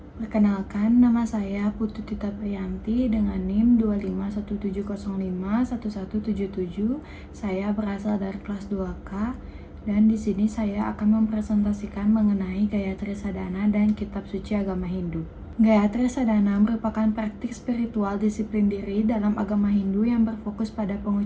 Perkenalkan, nama saya Putu Tita Priyanti dengan NIM 25170511177. Saya berasal dari kelas 2K dan di sini saya akan mempresentasikan mengenai Gayatri Sadhana dan Kitab Suci Agama Hindu. Gayatri Sadhana merupakan praktik spiritual disiplin diri dalam agama Hindu yang berfokus pada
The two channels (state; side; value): identical; both; correlation 1.00